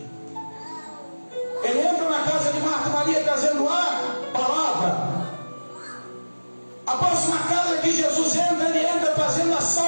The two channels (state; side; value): inverted; both; correlation -1.00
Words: Ele entra na casa de Marta e Maria trazendo a palavra. A próxima casa que Jesus entra, ele entra trazendo a